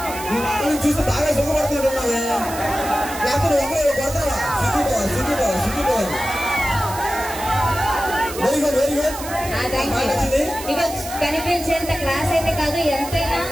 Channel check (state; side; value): noise; right; hiss, 11 dB below the sound